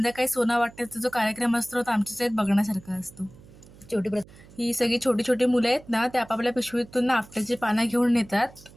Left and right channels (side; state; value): right; noise; hum, 22 dB below the sound